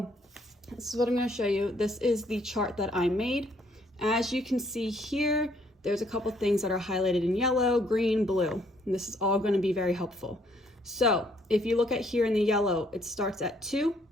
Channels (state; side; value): normal; both; correlation 0.66